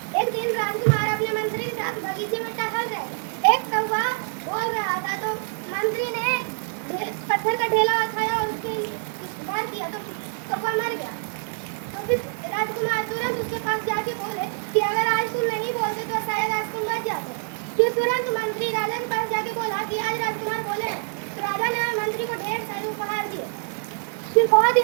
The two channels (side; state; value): left; silent; 55 dB below the other